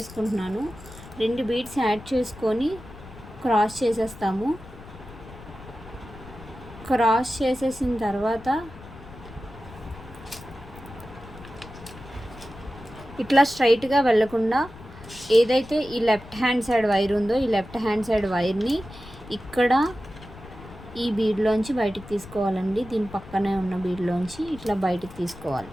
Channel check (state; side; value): noise; left; rumble, 17 dB below the sound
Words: 2 బీడ్స్ యాడ్ చేసుకొని క్రాస్ చేసేస్తాము. క్రాస్ చేసేసిన తర్వాత ఇట్లా స్ట్రైట్గా వెళ్ళకుండా ఏదైతే ఈ లెఫ్ట్ హ్యాండ్ సైడ్ వైర్ ఉందో ఈ లెఫ్ట్ హ్యాండ్ సైడ్ వైర్ని ఇక్కడ ఈ బీడ్లోంచి బయటికి తీసుకోవాలండి. దీని పక్కనే ఉన్న బీడ్లోంచి ఇట్లా బయటికి తీసుకోవాలి.